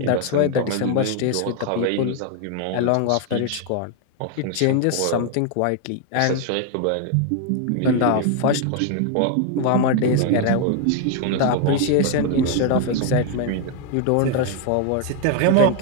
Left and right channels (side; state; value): both; different; correlation 0.01